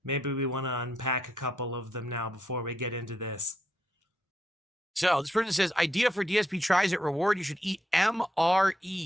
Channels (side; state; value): both; normal; correlation 0.78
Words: Maybe we want to unpack a couple of them now before we get into this. So this person says, idea for DSP Tries It reward, you should eat